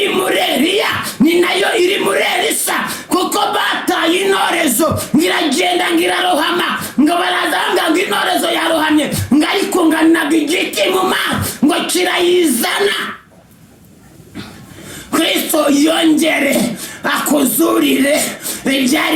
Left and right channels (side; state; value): both; identical; correlation 1.00